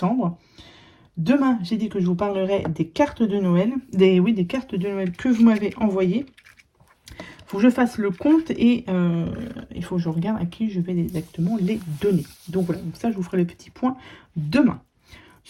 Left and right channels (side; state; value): both; identical; correlation 1.00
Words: Demain, j'ai dit que je vous parlerai des cartes de Noël, des cartes de Noël que vous m'avez envoyées. Il faut que je fasse le compte et il faut que je regarde à qui je vais exactement les donner. Donc voilà, donc ça, je vous ferai le petit point demain.